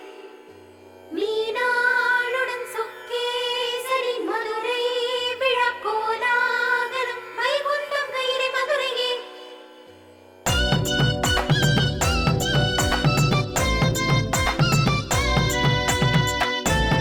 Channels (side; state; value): both; identical; correlation 1.00